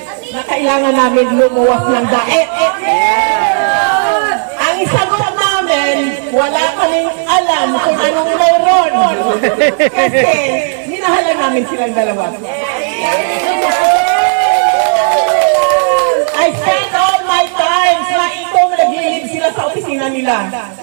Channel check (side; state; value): left; silent; digital silence